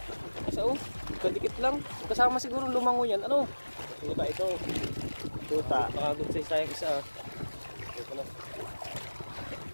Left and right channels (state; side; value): inverted; both; correlation -1.00